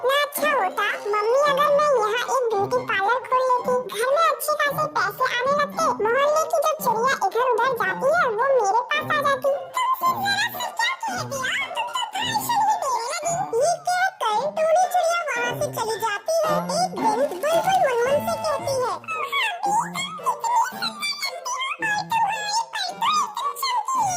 अच्छा होता मम्मी अगर मैं यहाँ एक ब्यूटी पार्लर खोल लेती, घर में अच्छे खासे पैसे आने लगते, मोहल्ले की जब चिड़िया इधर उधर जाती है वो मेरे पास आ जाती। ये कहकर टोनी चिड़िया वहाँ से चली जाती है। एक दिन बुलबुल मुनमुन से कहती है,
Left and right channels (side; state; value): both; identical; correlation 1.00